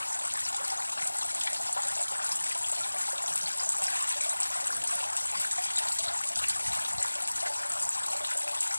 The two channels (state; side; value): inverted; both; correlation -1.00